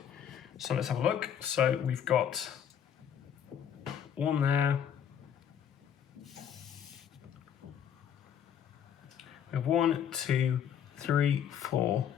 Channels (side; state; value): right; quieter; 8.8 dB